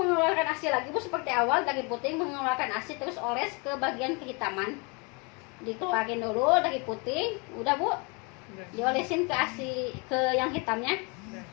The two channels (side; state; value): right; quieter; 31.4 dB